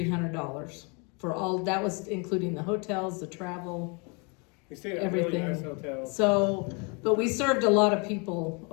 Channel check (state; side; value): quieter; right; 32.9 dB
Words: for all, that was including the hotels, the travel, We stayed at a really everything. nice hotel. So, but we served a lot of people